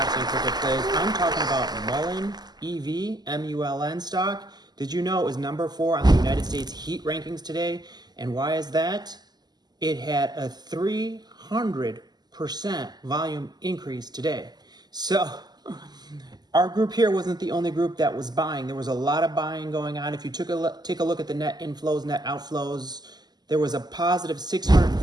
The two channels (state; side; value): late; left; 0.20 ms